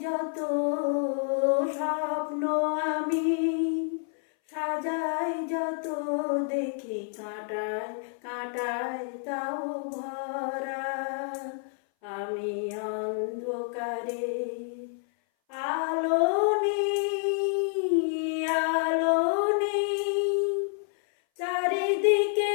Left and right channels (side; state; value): right; silent; 58 dB below the other